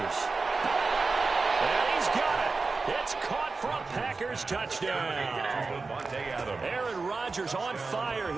And he's got it. It's caught for a Packers touchdown. Aaron Rodgers on fire,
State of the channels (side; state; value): left; quieter; 4.1 dB